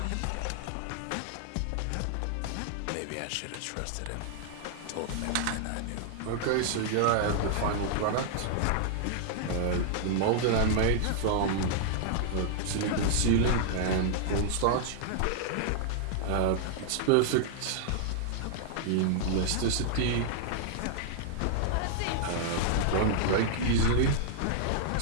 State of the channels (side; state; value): both; different; correlation -0.01